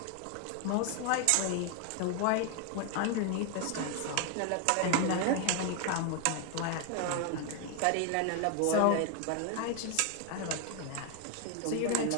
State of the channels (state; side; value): different; both; correlation 0.01